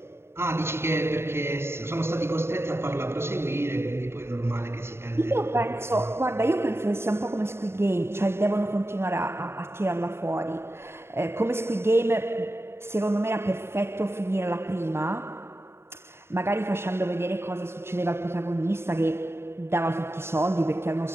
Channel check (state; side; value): late; left; 0.12 ms